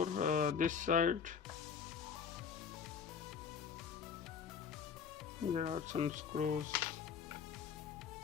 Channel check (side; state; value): right; quieter; 6.6 dB